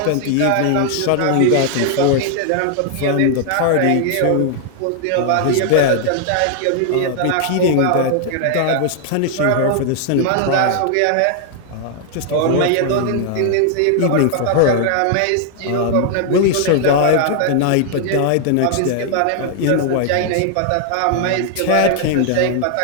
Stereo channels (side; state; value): both; different; correlation 0.00